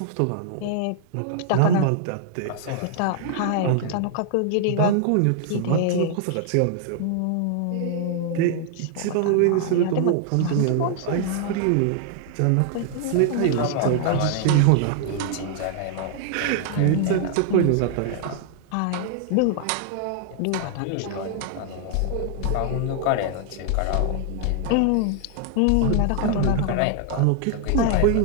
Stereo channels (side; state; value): both; different; correlation 0.00